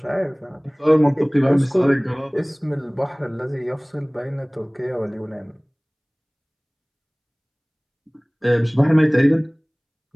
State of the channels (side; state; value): both; identical; correlation 1.00